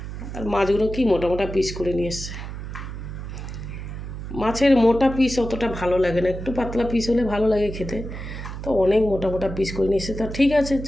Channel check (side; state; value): right; noise; hum, 8 dB below the sound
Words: আর মাছগুলো কি মোটা মোটা পিস করে নিয়ে এসছে। মাছের মোটা পিস অতটা ভালো লাগে না, একটু পাতলা পিস হলে ভালো লাগে খেতে। তো অনেক মোটা মোটা পিস করে নিয়ে এসে, তা ঠিক আছে